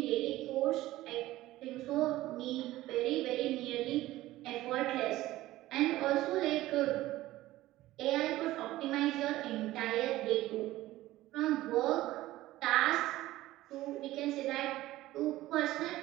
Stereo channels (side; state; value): left; quieter; 16.4 dB